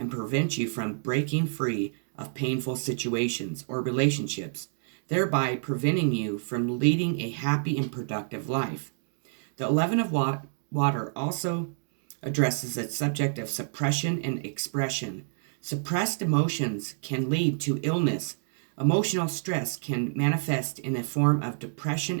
prevents you from breaking free of painful situations or relationships, thereby preventing you from leading a happy and productive life. The 11 of water also addresses the subject of suppression and expression. Suppressed emotions can lead to illness. Emotional stress can manifest in a form of depression,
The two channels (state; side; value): silent; left; digital silence